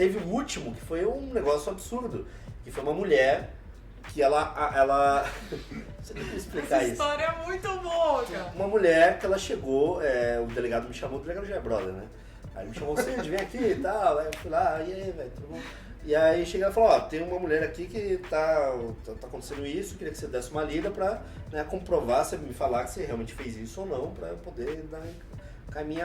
o último que foi um negócio absurdo, que foi uma mulher que ela não sei como explicar Essa isso. história é muito boa, cara. Uma mulher que ela chegou, o delegado me chamou, o delegado já é brother, né? Aí ele me chamou, Cid, vem aqui e tal. Aí eu fui lá, e aí, velho, tudo bom? E aí cheguei e falou, ó, tem uma mulher aqui que tá acontecendo isso, queria que você desse uma lida pra, né, comprovar, você me falar que você realmente fez isso ou não, pra eu poder dar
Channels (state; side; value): identical; both; correlation 1.00